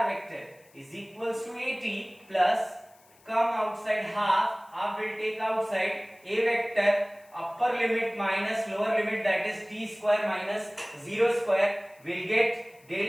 vector is equals to at plus, come outside half will take outside, a vector upper limit minus lower limit, that is t square minus 0 square, will get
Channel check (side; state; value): left; noise; hiss, 29 dB below the sound